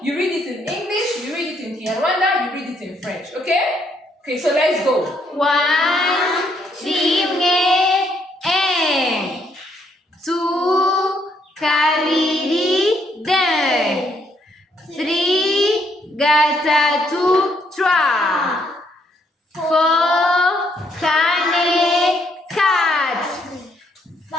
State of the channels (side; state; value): both; normal; correlation 0.71